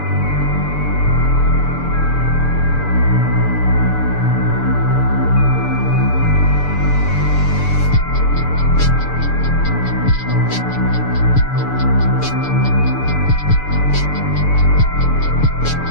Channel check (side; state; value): right; late; 6.8 ms